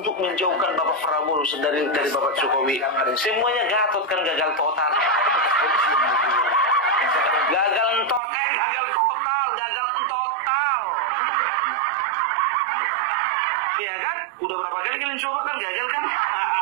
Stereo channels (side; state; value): left; drops out; at 8.2 s